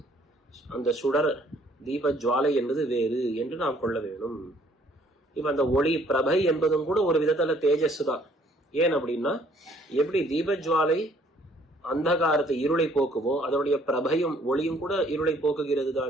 அந்த சுடர் தீப ஜுவாலை என்பது வேறு என்று நாம் கொள்ள வேணும். இப்ப அந்த ஒளி பிரபை என்பதும் கூட ஒரு விதத்துல தேஜஸ் தான். ஏன் அப்படின்னா, எப்படி தீப ஜுவாலை அந்தகாரத்தை இருளை போக்குமோ அதனுடைய பிரபையும் ஒளியும் கூட இருளை போக்குகிறது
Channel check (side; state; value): both; normal; correlation 0.61